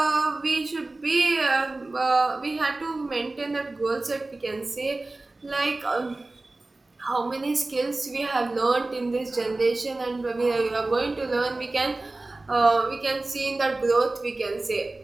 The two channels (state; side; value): quieter; left; 3.0 dB